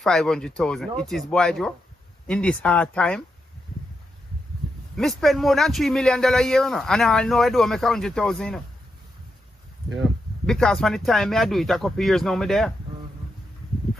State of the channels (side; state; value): both; normal; correlation 0.85